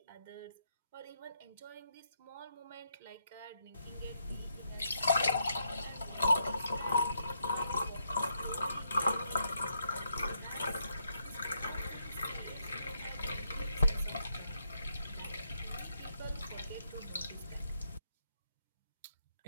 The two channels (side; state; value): both; inverted; correlation -0.78